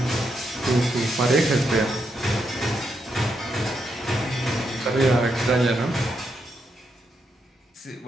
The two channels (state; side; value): normal; both; correlation 0.81